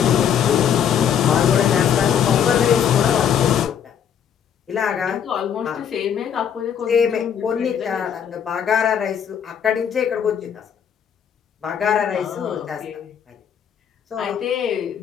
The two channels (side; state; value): right; quieter; 8.4 dB